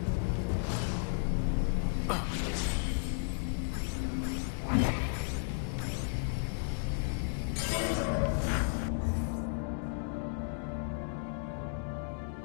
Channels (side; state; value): right; silent; digital silence